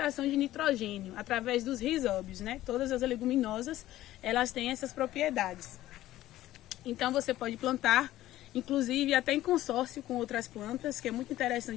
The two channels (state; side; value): quieter; right; 14.7 dB